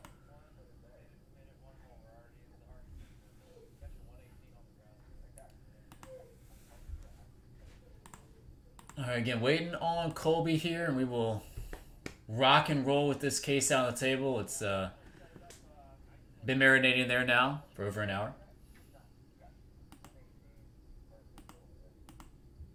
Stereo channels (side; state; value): both; identical; correlation 1.00